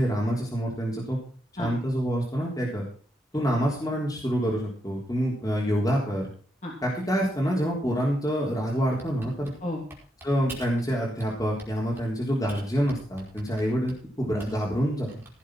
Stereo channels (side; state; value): both; normal; correlation 0.82